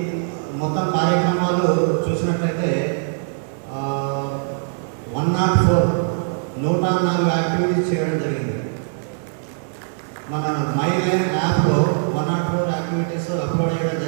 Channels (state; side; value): silent; left; 59 dB below the other